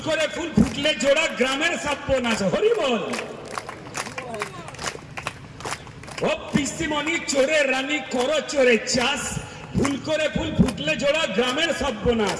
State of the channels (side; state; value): both; identical; correlation 1.00